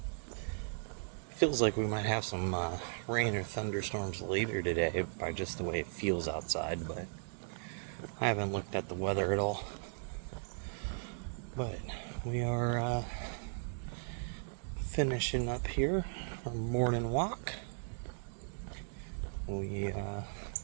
Feels like we might have some rain or thunderstorms later today by just the way it feels outside, but I haven't looked at the weather at all. But we are finishing up here our morning walk. We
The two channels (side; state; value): left; silent; digital silence